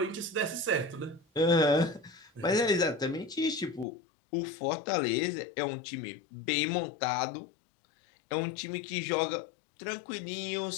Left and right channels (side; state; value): right; drops out; at 3.9 s